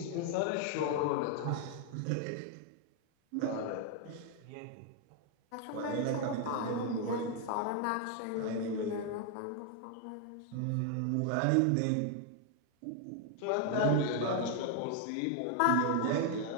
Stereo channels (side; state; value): both; different; correlation 0.00